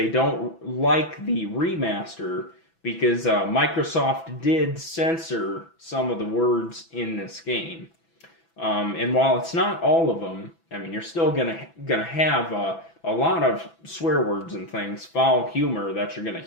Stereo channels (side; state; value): right; late; 6.0 ms